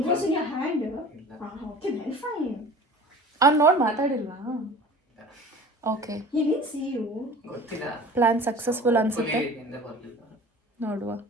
was in your hand. ಇಲ್ಲ. Okay, then fine. ಅವ್ನು ನೋಡಿ ಮಾತಾಡಿಲ್ವಾ? Okay, He didn't see you. ಗೊತ್ತಿಲ್ಲ, ಪ್ಲಾನ್ ಸಕ್ಸಸ್ಫುಲ್ ಅನ್ಸುತ್ತೆ. ಹಿಂದೆ ಬರ್ಲಿಲ್ಲ. ನೋಡುವ.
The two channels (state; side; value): normal; both; correlation 0.41